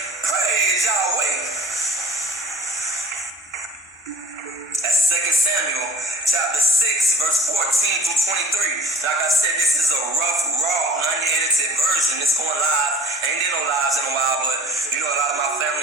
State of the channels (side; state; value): both; normal; correlation 0.47